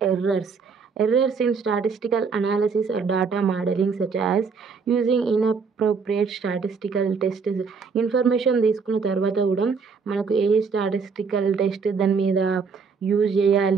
errors. Errors in statistical analysis or data modeling such as using inappropriate statistical tests. Information తీసుకున్న తర్వాత కూడా మనకు ఏ స్టాటిస్టికల్ టెస్ట్ దాని మీద యూజ్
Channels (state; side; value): quieter; left; 5.3 dB